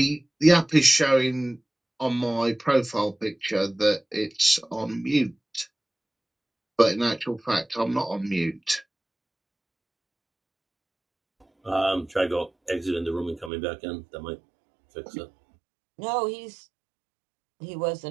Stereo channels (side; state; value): left; drops out; at 13.5 s